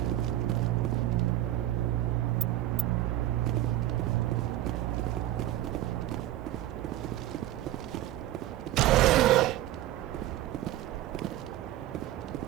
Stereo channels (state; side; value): quieter; left; 14.3 dB